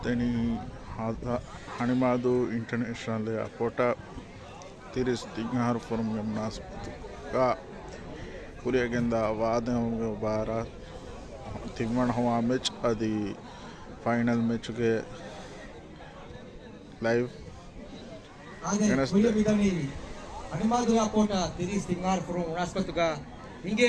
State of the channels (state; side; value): identical; both; correlation 1.00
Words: హణిమాదు ఇంటర్నేషనల్ ఏర్పోర్ట్ తిరిస్ తింగార్ ఫోరం నాస్పత్తుగా ಕುರಿಯಗೆಂದ ವಾದಂಗೆ ಬಾರ ತಿಮ್ಮಣ ಹವಾ ಮ್ಯಾಚ್ ಅದು ಫೈನಲ್ ಮ್ಯಾಚ್ಗೆ ಲೈವ್ ಹಣಿಮಾದು ಏರ್ಪೋರ್ಟ್ ತಿರಿಸ್ ತಿಂಗಾರ್ ಫೋರಂ ನಾಸ್ಪತ್ತುಗ ಹಿಂಗೆ